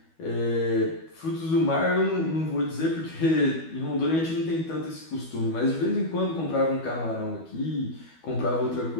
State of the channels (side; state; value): right; late; 12 ms